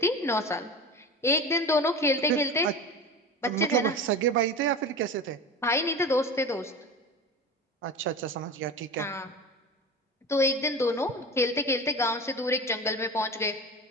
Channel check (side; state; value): both; normal; correlation 0.31